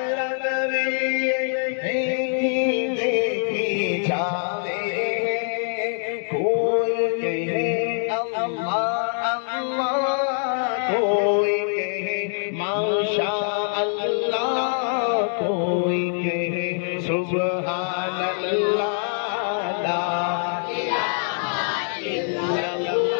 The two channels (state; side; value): silent; right; 63 dB below the other